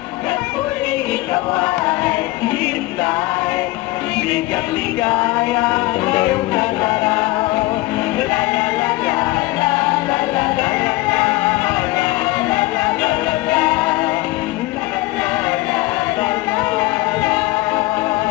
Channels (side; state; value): right; quieter; 19.6 dB